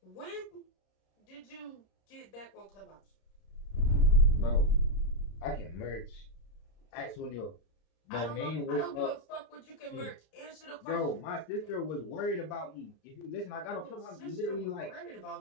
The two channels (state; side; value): late; right; 32 ms